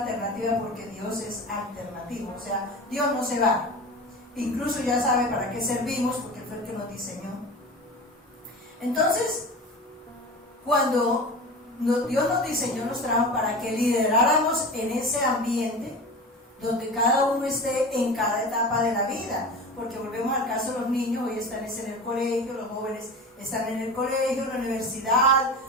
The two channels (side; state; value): both; normal; correlation 0.31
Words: alternativa, porque Dios es alternativo, o sea, Dios no se va, incluso ya sabe para qué servimos, porque Él fue el que nos diseñó. Entonces, cuando Dios nos diseñó, nos trajo para que lideráramos en ese ambiente donde cada uno esté en cada etapa de la vida, porque volvemos al caso de los niños, hoy están en el colegio, los jóvenes están en el colegio, en la universidad,